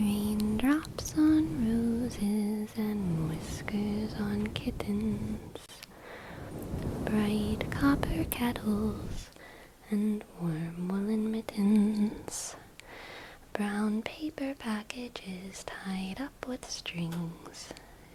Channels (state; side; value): identical; both; correlation 1.00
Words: on roses and whiskers on kittens, bright copper kettles and warm woolen mittens, brown paper packages tied up with strings.